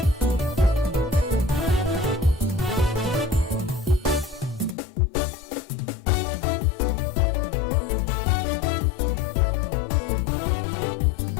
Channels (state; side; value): drops out; right; at 4.8 s